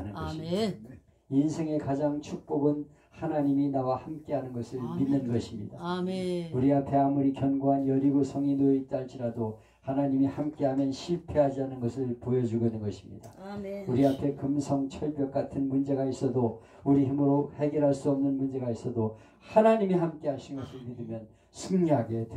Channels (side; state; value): both; identical; correlation 1.00